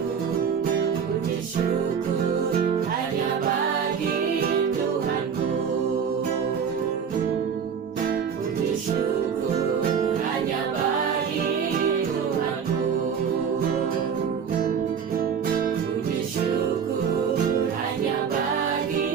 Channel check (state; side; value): quieter; left; 7.0 dB